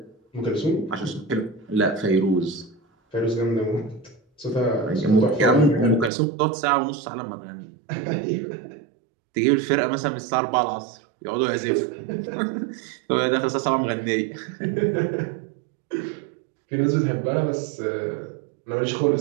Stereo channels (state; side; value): drops out; left; at 6.1 s